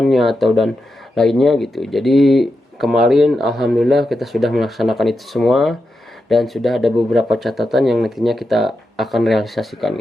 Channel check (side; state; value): both; normal; correlation 0.88